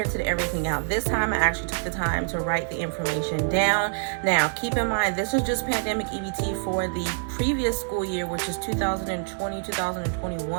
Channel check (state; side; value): silent; left; digital silence